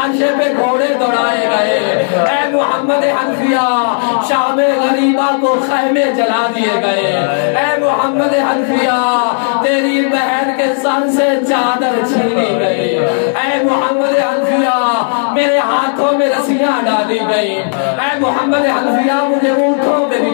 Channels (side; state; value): right; silent; 67 dB below the other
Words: پہ گھوڑے دوڑائے گئے، اے محمد حنفیہ شام غریبہ کو خیمے جلا دیے گئے، اے محمد حنفیہ تیری بہن کے سر سے چادر چھینی گئی، اے محمد حنفیہ میرے ہاتھوں میں رسیاں ڈالی گئی، اے محمد حنفیہ مجھے اونٹوں میں